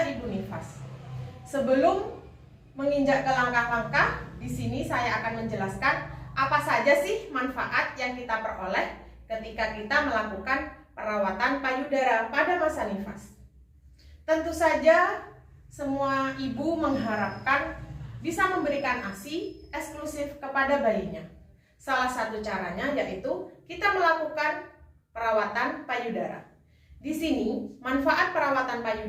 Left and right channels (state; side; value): identical; both; correlation 1.00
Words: ibu nifas. Sebelum menginjak ke langkah-langkah, di sini saya akan menjelaskan apa saja sih manfaat yang kita peroleh ketika kita melakukan perawatan payudara pada masa nifas. Tentu saja semua ibu mengharapkan bisa memberikan ASI eksklusif kepada bayinya. Salah satu caranya yaitu kita melakukan perawatan payudara. Di sini manfaat perawatan